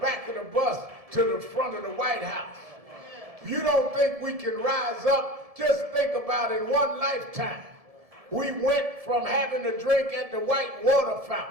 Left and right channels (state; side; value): late; left; 1.7 ms